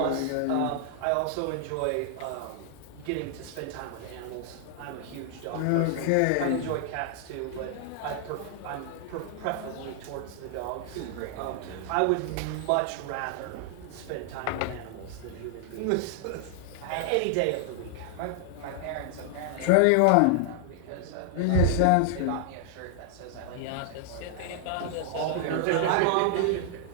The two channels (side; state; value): both; different; correlation 0.00